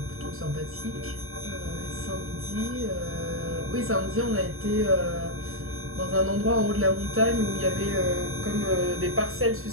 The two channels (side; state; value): left; late; 0.62 ms